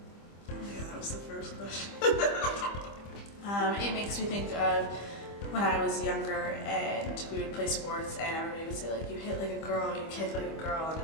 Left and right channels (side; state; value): right; late; 25 ms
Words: Yeah, that was the first question. It makes me think of when I was younger and we would play sports and everybody would say like, you hit like a girl, you kick like a girl, and